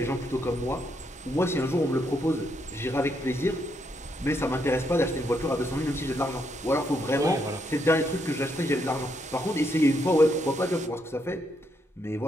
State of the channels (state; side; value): normal; both; correlation 0.77